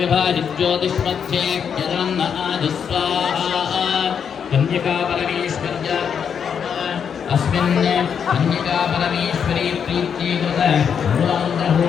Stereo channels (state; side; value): quieter; right; 7.3 dB